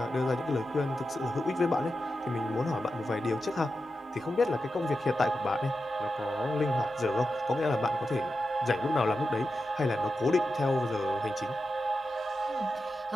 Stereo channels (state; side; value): normal; both; correlation 0.89